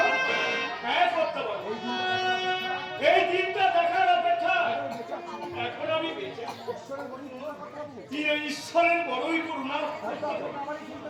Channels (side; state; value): both; identical; correlation 1.00